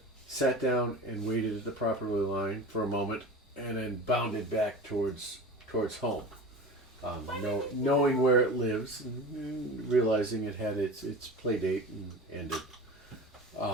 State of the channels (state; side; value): normal; both; correlation 0.33